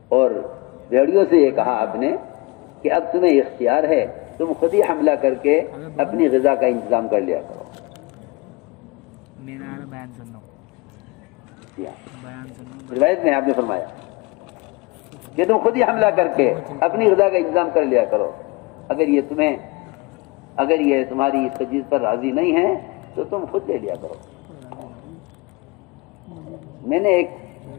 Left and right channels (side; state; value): right; quieter; 25.4 dB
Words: اور بھیڑیوں سے یہ کہا آپ نے کہ اب تمہیں اختیار ہے, تم خود ہی حملہ کر کے اپنی غذا کا انتظام کر لیا کرو. روایت میں آپ نے فرمایا کہ تم خود ہی حملہ کر کے اپنی غذا کا انتظام کر لیا کرو. اگر یہ تمہاری اس تجویز پر راضی نہیں ہے تو تم خود لے لیا کرو. میں نے ایک